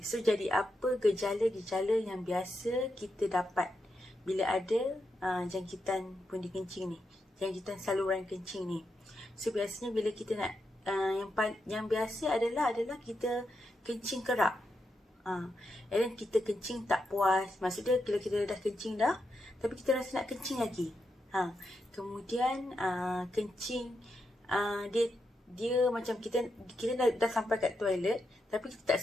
so jadi apa gejala-gejala yang biasa kita dapat bila ada jangkitan pundi kencing ni, jangkitan saluran kencing ni. So biasanya bila kita nak yang biasa adalah kita kencing kerap. And then kita kencing tak puas. Maksudnya bila kita dah kencing dah, tapi kita rasa nak kencing lagi. Kemudian kencing dia macam kita dah sampai kat toilet tapi kita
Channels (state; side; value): normal; both; correlation 0.85